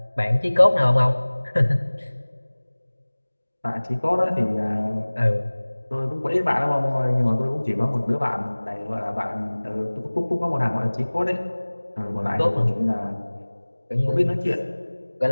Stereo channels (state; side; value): inverted; both; correlation -1.00